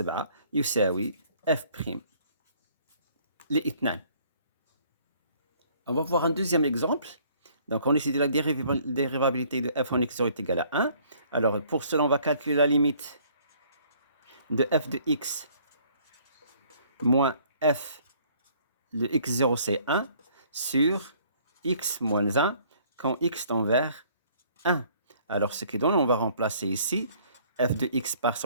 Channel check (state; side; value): inverted; both; correlation -0.59